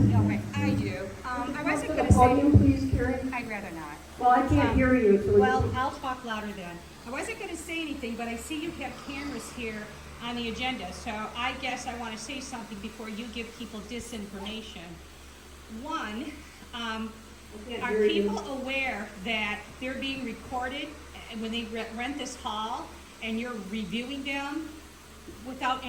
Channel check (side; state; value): both; identical; correlation 1.00